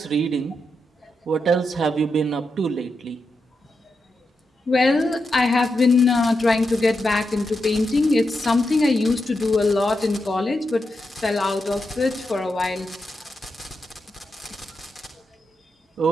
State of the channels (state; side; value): normal; both; correlation 0.86